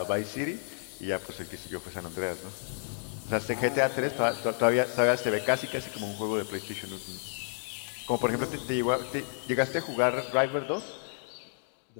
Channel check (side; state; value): right; silent; digital silence